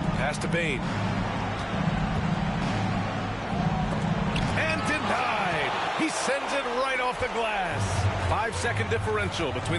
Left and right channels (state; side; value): identical; both; correlation 1.00